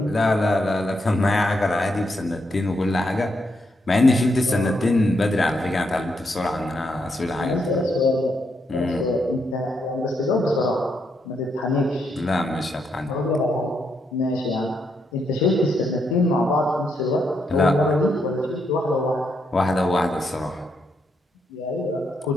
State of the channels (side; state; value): both; normal; correlation 0.79